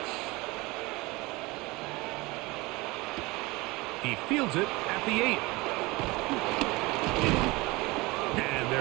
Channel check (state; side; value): quieter; left; 23.1 dB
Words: He fields it at the 8. And